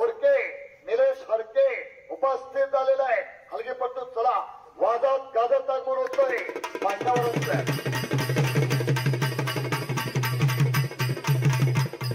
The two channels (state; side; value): identical; both; correlation 1.00